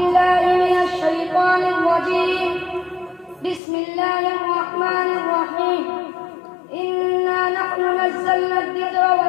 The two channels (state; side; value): drops out; right; at 3.6 s